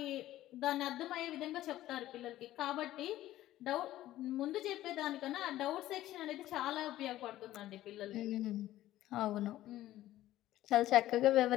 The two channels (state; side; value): quieter; right; 14.5 dB